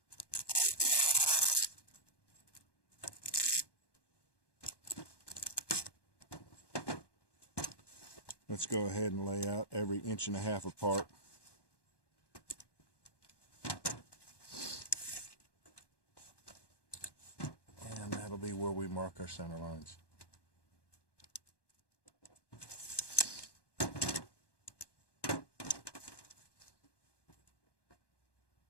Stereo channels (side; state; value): right; late; 1.1 ms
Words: let's go ahead and lay out every 1.5 inches apart. And that'll be where we mark our center lines.